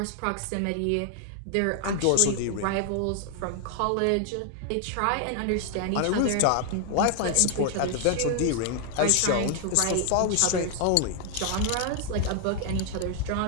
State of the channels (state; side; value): different; both; correlation 0.00